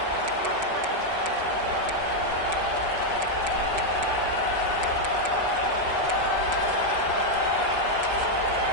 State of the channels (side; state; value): left; late; 5.2 ms